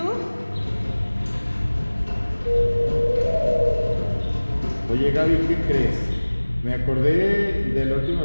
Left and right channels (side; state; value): both; inverted; correlation -1.00